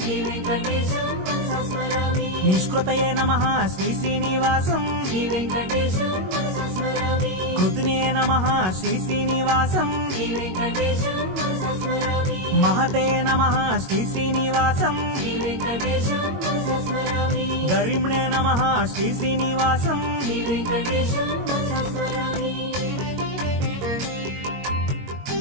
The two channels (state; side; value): late; left; 22 ms